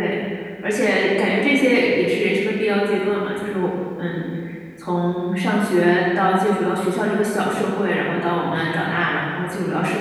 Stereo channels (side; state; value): both; identical; correlation 1.00